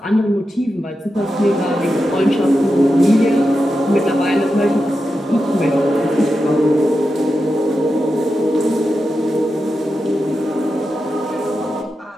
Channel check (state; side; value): normal; both; correlation 0.89